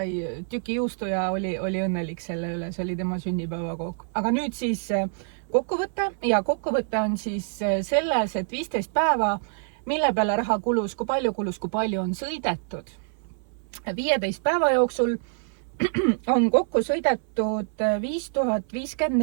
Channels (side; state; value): left; silent; 61 dB below the other